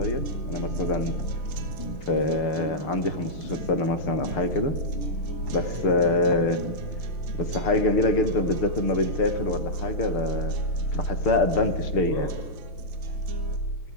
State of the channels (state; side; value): late; right; 6.7 ms